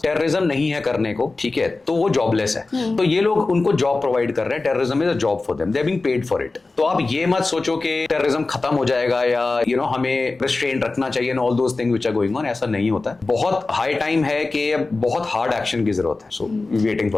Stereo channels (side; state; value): right; quieter; 3.5 dB